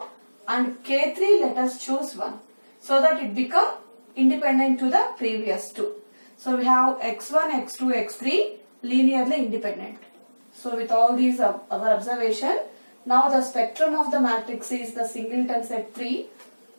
and K3 let us choose 1, so that it become independent to the previous two. So we have x1, x2, x3 linearly independent. So with all these our observation, now the spectrum of the matrix is the singleton set 3.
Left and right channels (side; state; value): both; inverted; correlation -1.00